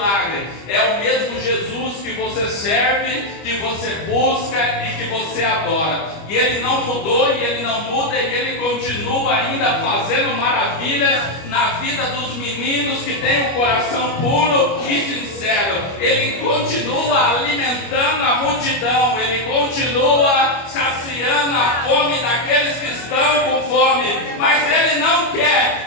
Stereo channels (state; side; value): late; right; 25 ms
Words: é o mesmo Jesus que você serve, que você busca e que você adora. E Ele não mudou, e Ele não muda, e Ele continua ainda fazendo maravilhas na vida dos meninos que têm um coração puro e sincero. Ele continua alimentando a multidão, Ele continua saciando a fome daqueles que estão com fome, mas Ele não quer